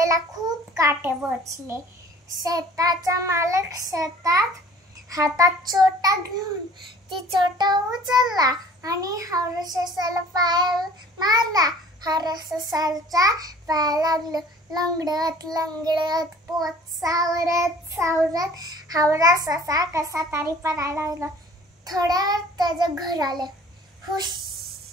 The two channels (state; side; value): normal; both; correlation 0.50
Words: खूप काटे बसले. शेताचा मालक शेतात हातात चोटा घेऊन ती चोटा उचलला आणि हावरा ससाला पाय मारला. हावरा ससाचा पाय लागलं. लंगडत लंगडत पोट सावरत सावरत हावरा ससा कसा तरी पडायला लागला. थोड्या वेळात त्याचं घर आलं. हुश,